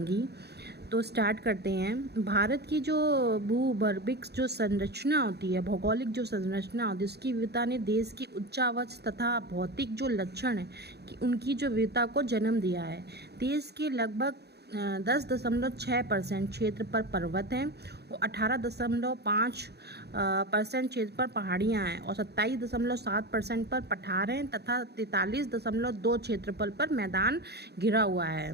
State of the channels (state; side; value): late; left; 0.48 ms